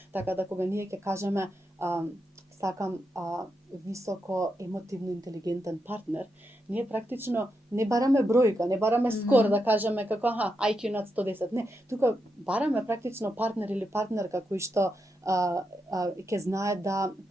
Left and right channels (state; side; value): normal; both; correlation 0.85